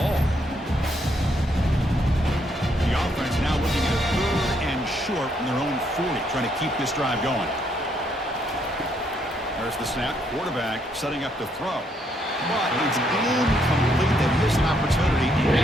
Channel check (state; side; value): normal; both; correlation 0.73